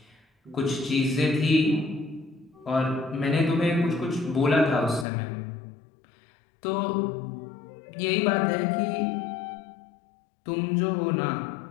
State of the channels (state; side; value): drops out; right; at 5.1 s